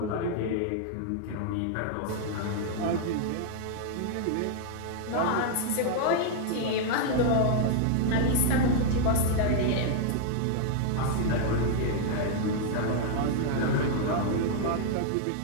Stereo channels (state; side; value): different; both; correlation -0.01